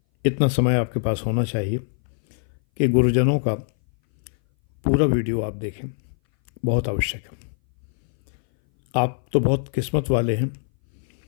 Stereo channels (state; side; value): silent; right; 60 dB below the other